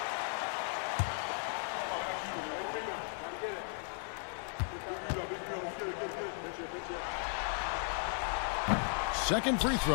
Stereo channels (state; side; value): silent; right; 54 dB below the other